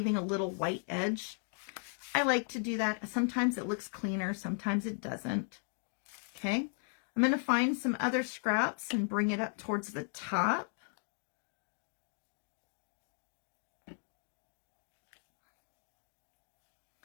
a little white edge. I like to do that. Sometimes it looks cleaner, sometimes it doesn't. Okay, I'm going to find some other scraps and bring it up towards the top.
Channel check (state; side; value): silent; right; 53 dB below the other